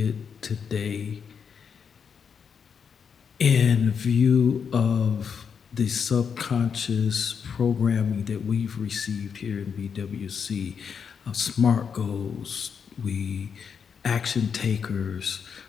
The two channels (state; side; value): quieter; right; 6.7 dB